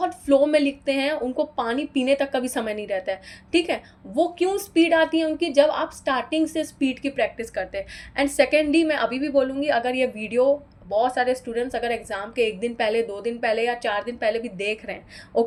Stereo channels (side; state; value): both; identical; correlation 1.00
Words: फ्लो में लिखते हैं, उनको पानी पीने तक का भी समय नहीं रहता है, ठीक है। वो क्यों स्पीड आती है उनकी? जब आप स्टार्टिंग से स्पीड की प्रैक्टिस करते हैं। एंड सेकेंडली, मैं अभी भी बोलूँगी, अगर ये वीडियो बहुत सारे स्टूडेंट्स अगर एग्जाम के 1 दिन पहले, 2 दिन पहले या 4 दिन पहले भी देख रहे हैं,